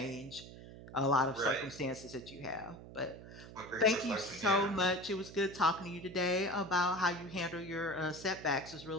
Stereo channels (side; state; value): right; noise; hum, 15 dB below the sound